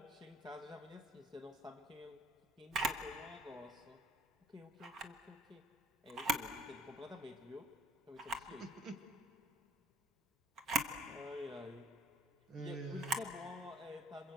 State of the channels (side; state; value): both; normal; correlation 0.59